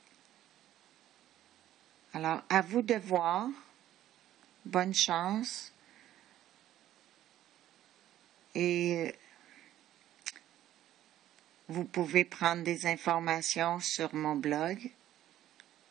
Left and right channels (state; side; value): quieter; left; 12.7 dB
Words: Alors, à vous de voir. Bonne chance. Et vous pouvez prendre des informations sur mon blog